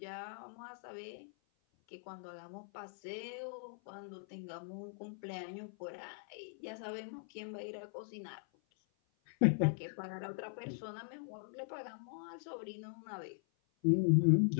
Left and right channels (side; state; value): right; silent; 51 dB below the other